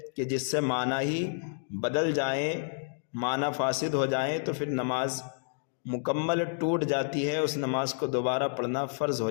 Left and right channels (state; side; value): silent; right; digital silence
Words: کہ جس سے معنی ہی بدل جائیں، معنی فاسد ہو جائیں، تو پھر نماز مکمل ٹوٹ جاتی ہے، اس نماز کو دوبارہ پڑھنا فرض ہو